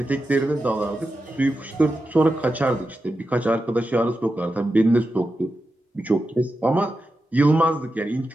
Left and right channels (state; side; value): normal; both; correlation 0.90